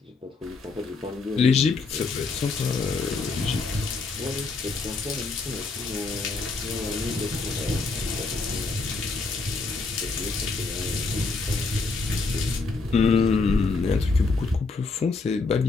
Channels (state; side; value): quieter; right; 4.0 dB